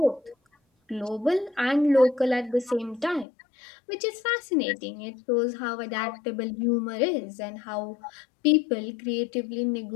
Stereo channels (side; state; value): right; drops out; at 3.2 s